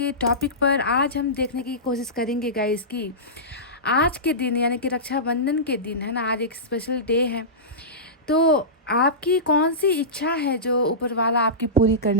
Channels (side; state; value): both; normal; correlation -0.19